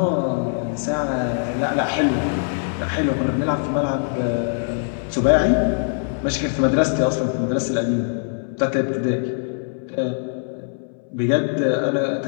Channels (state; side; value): silent; right; 64 dB below the other